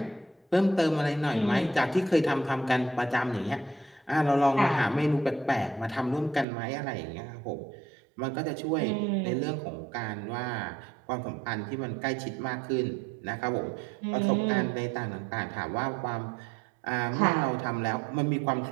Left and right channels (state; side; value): drops out; left; at 6.5 s